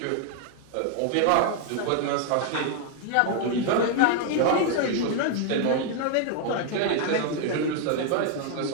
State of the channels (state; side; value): different; both; correlation 0.00